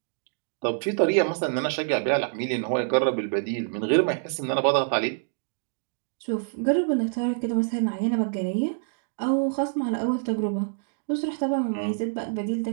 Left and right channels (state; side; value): silent; left; digital silence